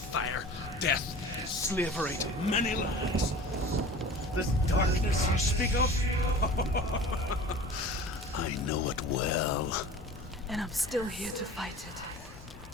death, and slavery to many lands. This darkness you speak of, I know it well. And I'm still here to fight it.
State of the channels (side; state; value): both; normal; correlation 0.40